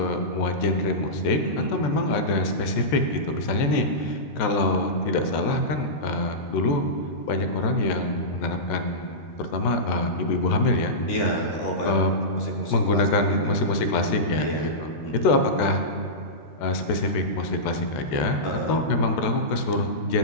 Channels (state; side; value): late; right; 14 ms